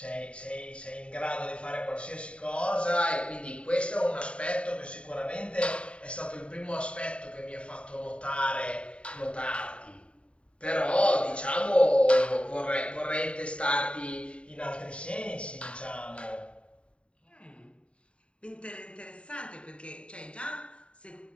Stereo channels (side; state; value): right; late; 0.059 ms